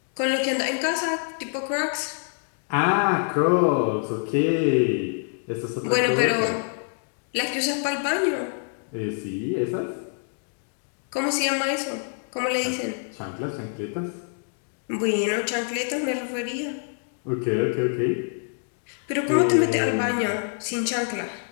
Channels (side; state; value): right; silent; 59 dB below the other